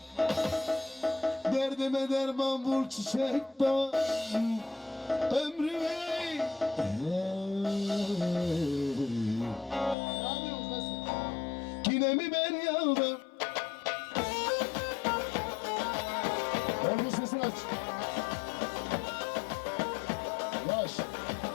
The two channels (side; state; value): right; drops out; at 10.0 s